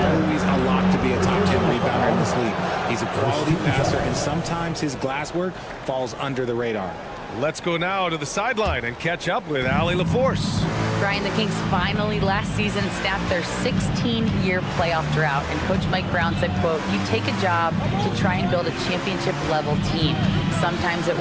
a lock to be a top 10 rebounder in this league. He's a quality passer, and sometimes his glass work falls under the radar. Let's go now to the sideline and catch up with Allie LaForce. Brian, the Kings finally last season snapped their 16-year playoff drought, and Coach Mike Brown said, quote, "You take a job to try and build a championship-level team. Sometimes it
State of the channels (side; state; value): both; identical; correlation 1.00